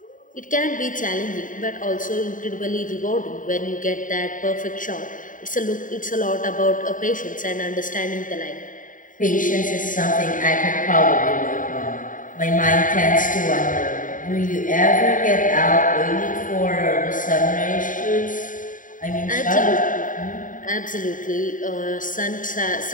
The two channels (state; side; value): late; right; 0.38 ms